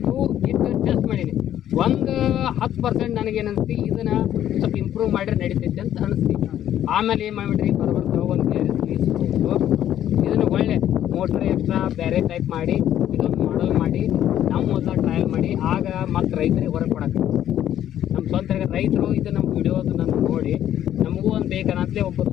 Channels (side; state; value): right; quieter; 11.3 dB